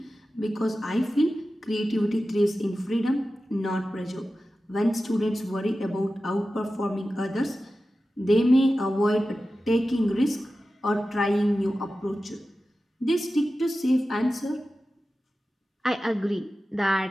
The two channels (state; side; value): normal; both; correlation 0.94